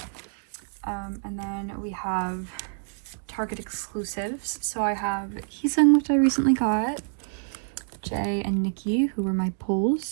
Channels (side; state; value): left; silent; digital silence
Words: And then we have Target exclusives. So I have Heesung, which I recently got, Jay and Nikki, who were my